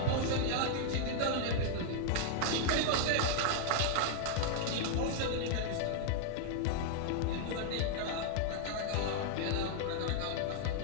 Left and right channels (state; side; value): different; both; correlation -0.01